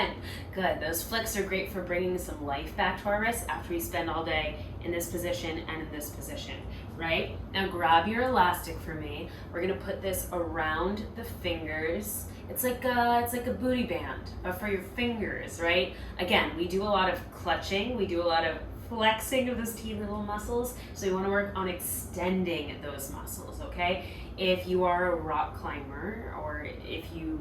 Good. Those flicks are great for bringing some life back to our wrists after we spend all day in this position and in this position, right? Now grab your elastic for me. We're going to put this around the fingers. It's like a booty band, but for your fingers, right? Again, we do a lot of clutching. We do a lot of flexing of those teeny little muscles. So we want to work on extending those muscles, okay? If you are a rock climber or if you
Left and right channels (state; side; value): identical; both; correlation 1.00